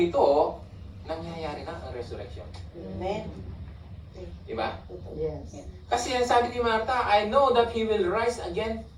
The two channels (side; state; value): both; identical; correlation 1.00